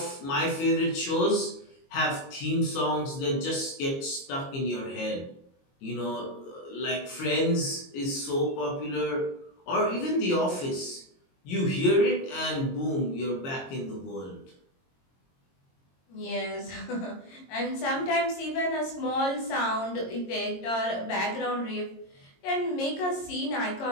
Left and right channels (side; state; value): right; late; 22 ms